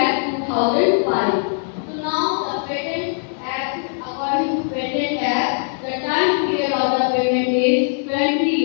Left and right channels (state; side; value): silent; right; digital silence